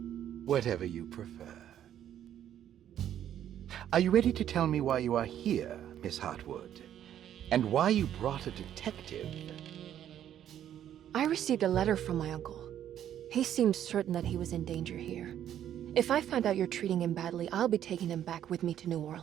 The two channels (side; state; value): left; quieter; 10.6 dB